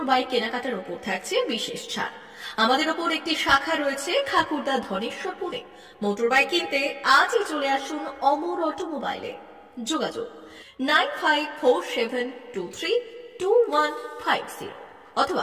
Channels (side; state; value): both; identical; correlation 1.00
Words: বাইক কেনাকাটার উপর থাকছে বিশেষ ছাড়। আমাদের ওপর একটি শাখা রয়েছে খাকুরদা ধনেশ্বরপুরে। মোটর বাইক কিনতে আজই চলে আসুন অমর অটোমোবাইলে। যোগাযোগ 9547232150